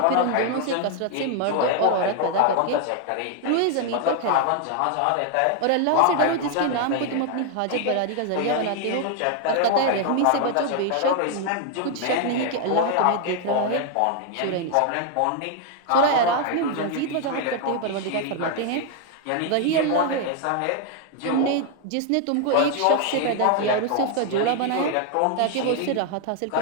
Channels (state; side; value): different; both; correlation 0.00